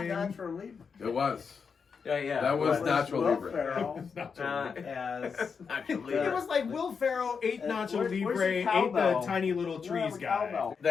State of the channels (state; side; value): quieter; right; 5.8 dB